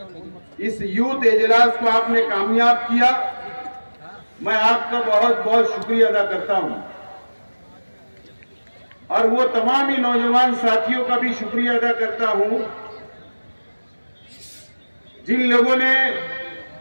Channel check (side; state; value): both; inverted; correlation -1.00